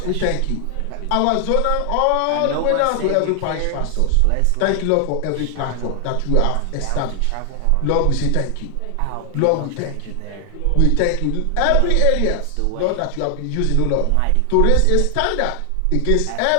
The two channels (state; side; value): different; both; correlation 0.00